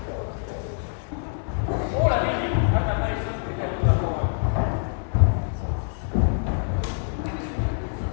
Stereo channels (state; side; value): silent; right; digital silence